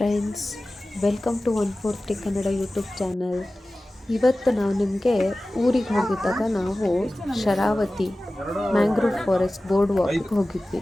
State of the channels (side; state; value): both; normal; correlation 0.96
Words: welcome to 140 Kannada YouTube channel. ಇವತ್ತು ನಾವು ನಿಮಗೆ ಊರಿಗೆ ಹೋಗಿದ್ದಾಗ ನಾವು ಶರಾವತಿ ಮ್ಯಾಂಗ್ರೋವ್ ಫಾರೆಸ್ಟ್ ಬೋರ್ಡ್ ವಾಕ್ಗೆ ಹೋಗಿದ್ವಿ.